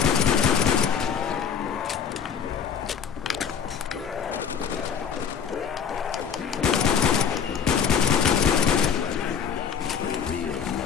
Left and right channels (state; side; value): quieter; right; 7.1 dB